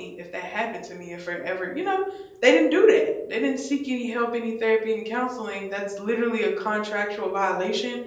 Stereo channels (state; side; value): identical; both; correlation 1.00